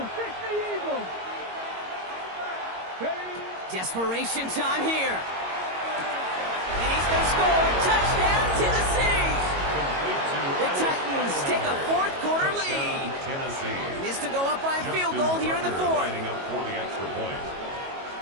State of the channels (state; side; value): late; left; 22 ms